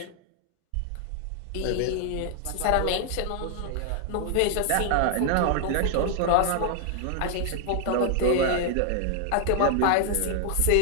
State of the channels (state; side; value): different; both; correlation 0.00